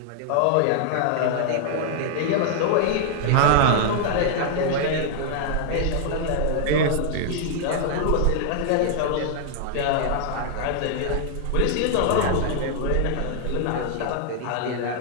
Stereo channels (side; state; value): both; different; correlation -0.01